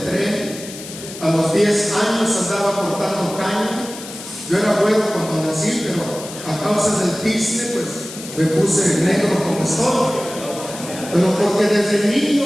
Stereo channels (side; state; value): left; noise; hiss, 13 dB below the sound